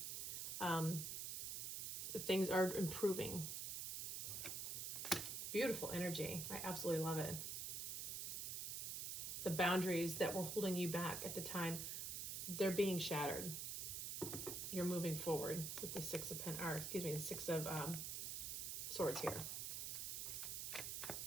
Things are improving. Beautiful energy. I absolutely love it. The boundaries that were holding you back at the time, they're being shattered. You're moving forward with the the Six of Swords here.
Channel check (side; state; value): right; noise; hiss, 3 dB below the sound